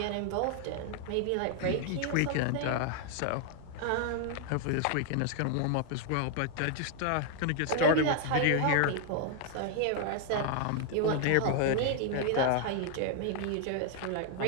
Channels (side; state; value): both; different; correlation 0.00